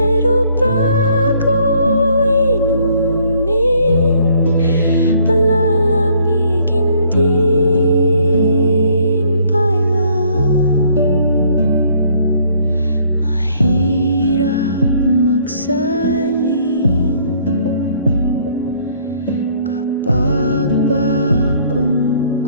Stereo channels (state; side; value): inverted; both; correlation -0.63